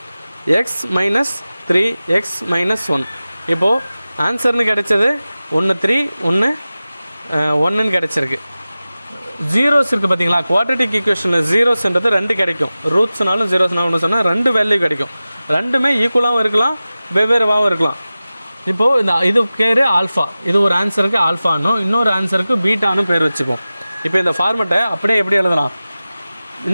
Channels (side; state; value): both; inverted; correlation -0.96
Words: x - 3 x - 1. இப்போது ஆன்சர்னு கிடச்சது 1 3 1 1ன்னு கிடச்சிருக்கு. ஜீரோஸ் இருக்குது பார்த்தீங்களா? குவாட்ரட்டிக் ஈக்குவேஷனில் ஜீரோஸ்ன்றது 2 கிடைக்கும். ரூட்ஸ்னாலும் ஜீரோஸ்னாலும் ஒன்று சொன்னால் 2 வேல்யூ கிடைக்கும். ரெண்டுமே ஈக்குவலாகவும் இருக்கலாம், வெவ்வேறுவாகவும் இருக்கலாம். இப்போது இந்த இது பேர் ஆல்ஃபா. இது ஒரு ஆன்சருக்கு ஆல்ஃபானும் இன்னொரு ஆன்சருக்கு பீட்டானு பேர் வச்சுப்போம். இப்போ இந்த ஃபார்மெட்டை அப்படியே எப்படி எழுதலாம்?